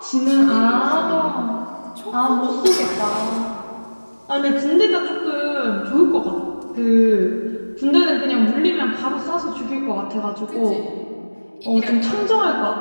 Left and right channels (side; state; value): both; inverted; correlation -1.00